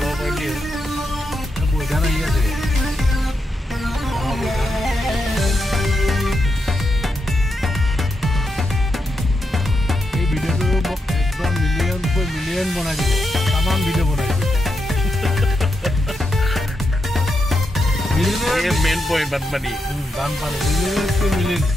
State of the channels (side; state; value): both; normal; correlation 0.84